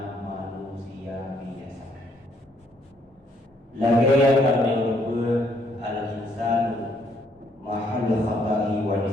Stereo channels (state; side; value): normal; both; correlation 0.69